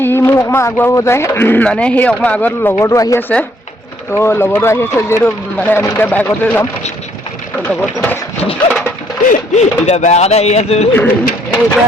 ই মোক অকণমান আগুৱাব যায়, মানে সেই অকণমান আগত লগৰটো আহি আছে। তো লগৰটো আহি আছে যিহেতু মানে আমি এতিয়া বাইকতে যাম। লগৰটো এতিয়া বেয়া কথা আহি আছো। এতিয়া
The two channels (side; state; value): both; normal; correlation 0.67